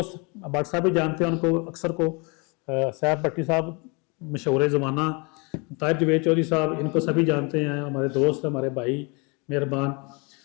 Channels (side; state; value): right; quieter; 30.7 dB